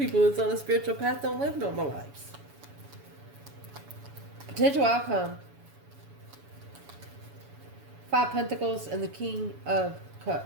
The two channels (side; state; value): left; late; 7.1 ms